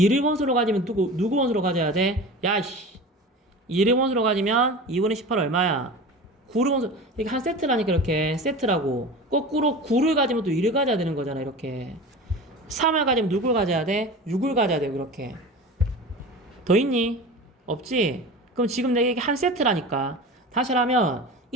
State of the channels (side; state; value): both; normal; correlation 0.34